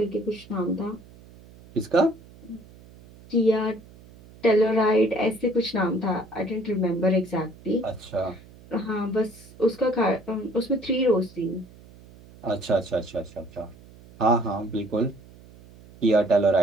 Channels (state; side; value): noise; right; hum, 22 dB below the sound